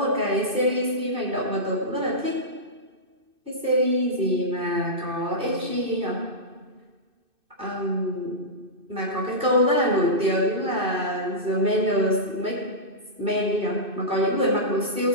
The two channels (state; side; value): late; left; 2.6 ms